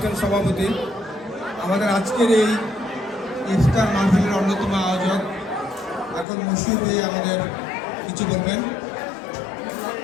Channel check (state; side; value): drops out; right; at 6.2 s